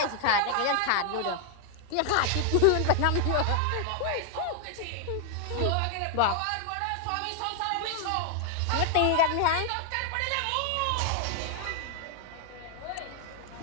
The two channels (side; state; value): both; different; correlation 0.00